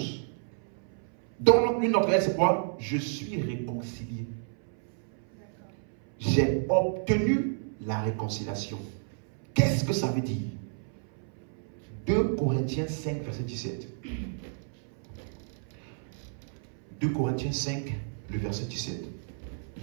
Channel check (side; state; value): left; silent; 57 dB below the other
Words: Dans une autre, c'est quoi? Je suis réconcilié. J'ai obtenu la réconciliation. Qu'est-ce que ça veut dire? 2 Corinthiens 5, verset 17. 2 Corinthiens 5, le verset 17.